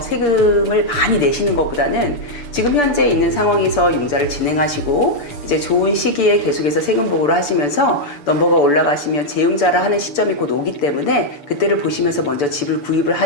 많이 내시는 것보다는 지금 현재 있는 상황에서 융자를 진행하시고 이제 좋은 시기에 계속해서 세금 보고를 하시면서 넘버가 올라가시면 재융자를 하는 시점이 곧 오기 때문에 그때를 보시면서 먼저 집을 구입을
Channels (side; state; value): right; late; 6.9 ms